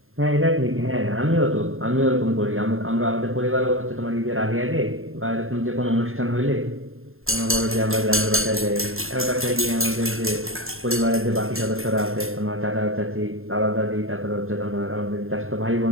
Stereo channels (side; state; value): left; late; 0.61 ms